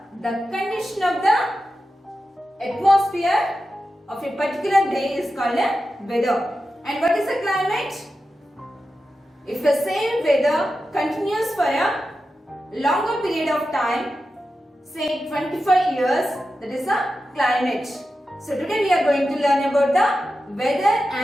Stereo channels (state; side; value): normal; both; correlation 0.91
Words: The condition of the atmosphere of a particular day is called weather. And what is the climate? If the same weather continues for a longer period of time, say 25 years, that is a climate. So today we are going to learn about the weather